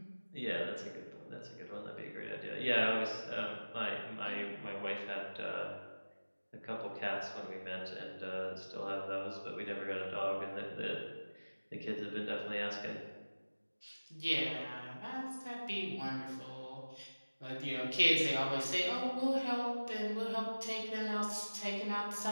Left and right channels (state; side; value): inverted; both; correlation -1.00